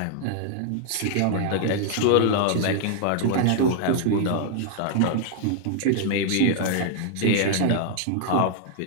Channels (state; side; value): different; both; correlation 0.00